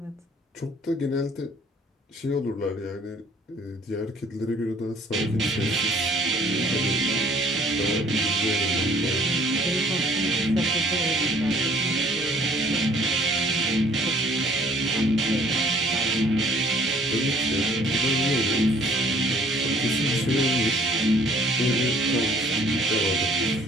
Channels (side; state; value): both; normal; correlation 0.58